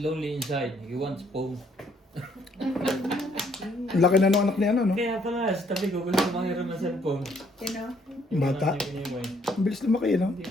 inside. He wants pong. ang laki na nung anak niya, ano, no? Kaya pala, sa tabi ko, gusto mangiram ng cellphone. Bata. Ang bilis lumaki, no? Hindi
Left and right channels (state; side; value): normal; both; correlation 0.66